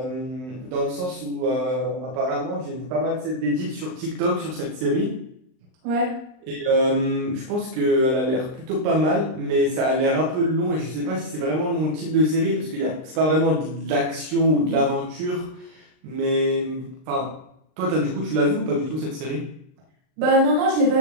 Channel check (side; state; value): left; late; 39 ms